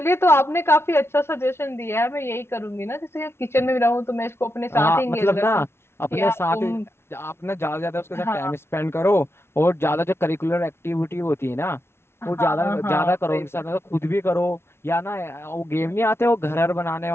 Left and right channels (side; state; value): right; late; 0.12 ms